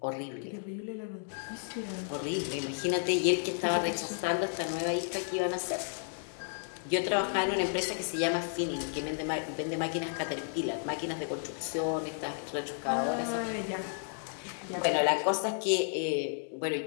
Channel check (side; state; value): right; silent; 56 dB below the other